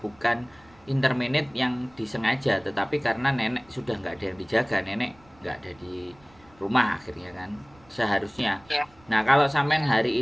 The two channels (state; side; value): noise; right; rumble, 28 dB below the sound